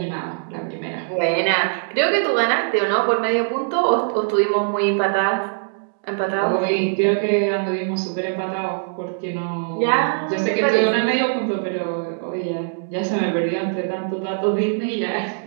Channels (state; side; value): silent; left; digital silence